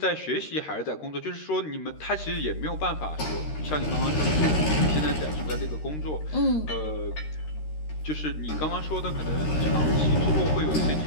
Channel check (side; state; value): right; late; 13 ms